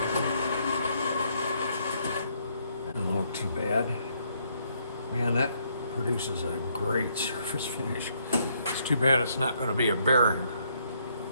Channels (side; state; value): both; inverted; correlation -0.71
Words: Doesn't look too bad. Man, that produces a great surface finish. It's too bad it's not going to be a bearing.